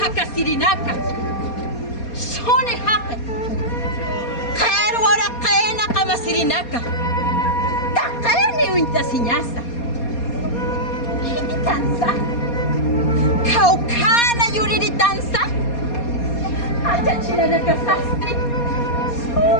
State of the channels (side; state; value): right; late; 4.2 ms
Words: Sone Haka, Kerwara Kena Kamasirinaka, Takeni Uintasiñasa, Hititanza, Kaukana Yuritanza, Ayachinanaka Sasti,